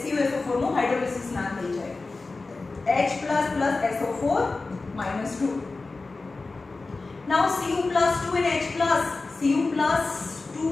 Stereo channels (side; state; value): right; quieter; 3.7 dB